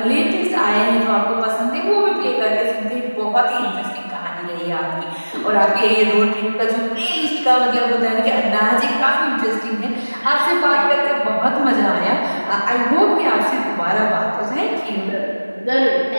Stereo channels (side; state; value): both; inverted; correlation -1.00